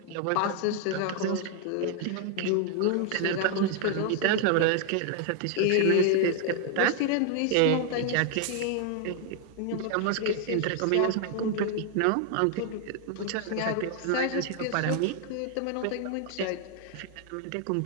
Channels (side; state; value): both; different; correlation 0.00